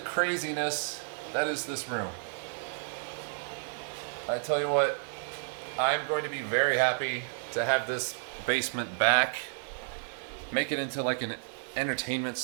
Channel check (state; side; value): silent; left; 57 dB below the other